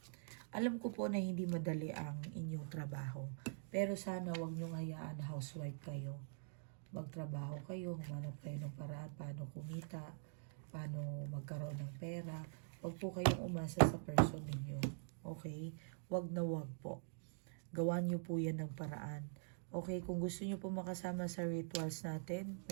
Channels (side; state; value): left; silent; digital silence